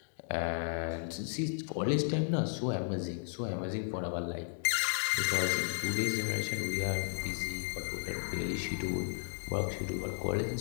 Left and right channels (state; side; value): silent; right; digital silence